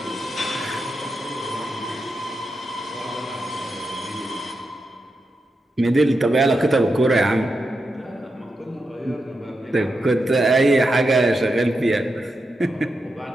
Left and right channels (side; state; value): both; normal; correlation 0.87